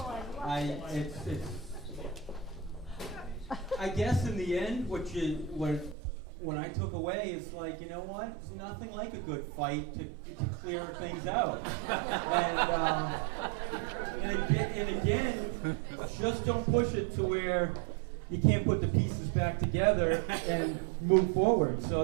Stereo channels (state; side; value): drops out; left; at 6.0 s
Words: I guess in the end, what I took away is like, you know what? It's nothing like a good fight to clear things out. And again, just don't push it to where you can't put the pieces back together and move forward. So